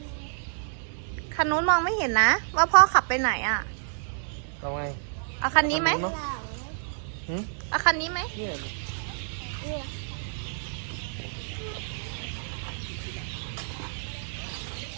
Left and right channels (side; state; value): left; silent; digital silence